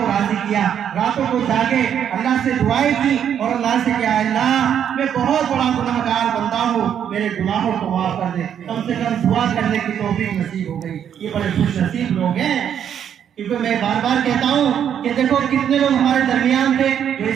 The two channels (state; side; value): quieter; left; 9.0 dB